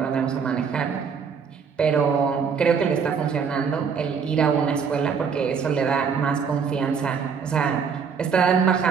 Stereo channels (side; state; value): left; quieter; 6.3 dB